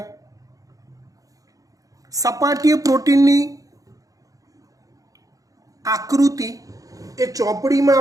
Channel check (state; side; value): late; left; 0.17 ms